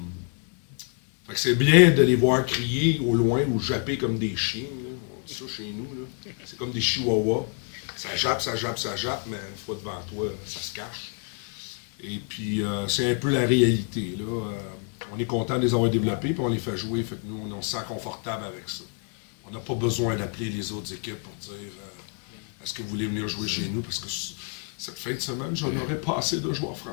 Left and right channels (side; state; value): right; quieter; 38.2 dB